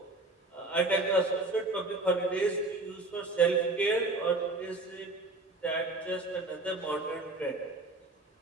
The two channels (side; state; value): left; quieter; 3.0 dB